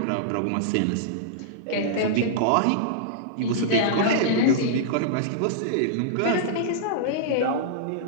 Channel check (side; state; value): both; different; correlation -0.02